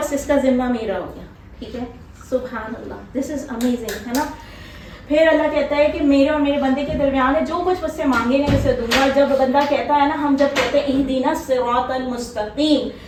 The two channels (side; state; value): both; identical; correlation 1.00